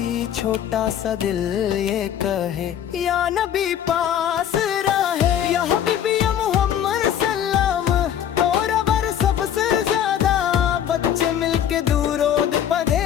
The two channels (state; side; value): quieter; right; 9.9 dB